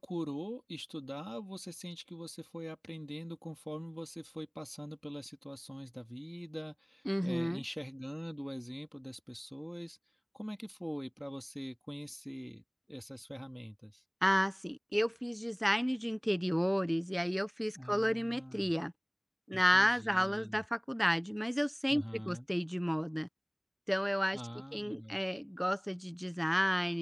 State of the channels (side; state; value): both; identical; correlation 1.00